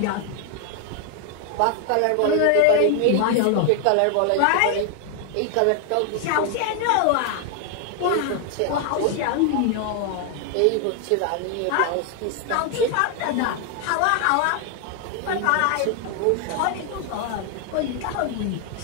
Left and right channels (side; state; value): both; different; correlation 0.00